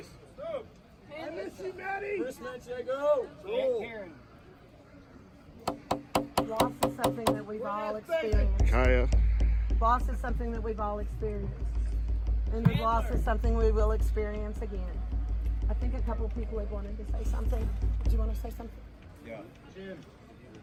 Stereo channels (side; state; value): both; identical; correlation 1.00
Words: I miss you, Maddie! Chris Manchego. Karen. Loss is something that we've all experienced. Kaya. Loss is something that we've all experienced. And the loss is something we will experience again. I think a couple of people have wanted to say something. Do you want to say something? Yeah.